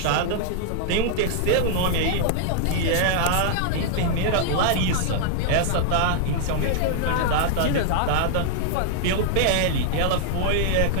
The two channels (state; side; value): different; both; correlation -0.01